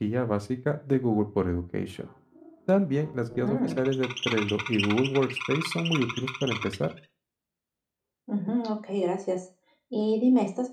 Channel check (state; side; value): identical; both; correlation 1.00